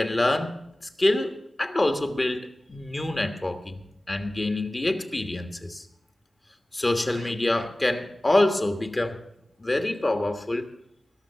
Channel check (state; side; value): normal; both; correlation 0.98